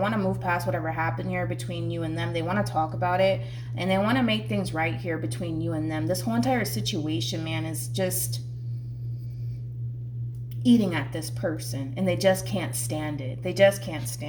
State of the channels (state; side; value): identical; both; correlation 1.00